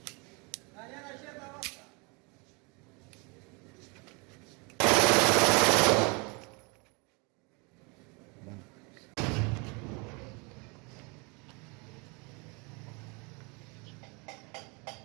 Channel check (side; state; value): left; quieter; 30.3 dB